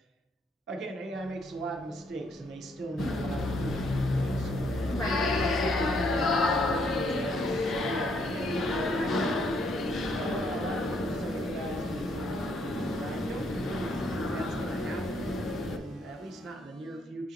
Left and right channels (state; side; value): normal; both; correlation 0.70